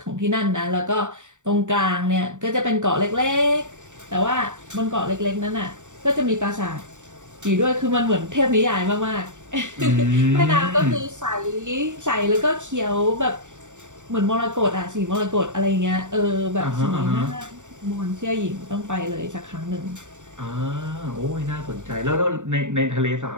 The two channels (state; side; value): late; left; 0.85 ms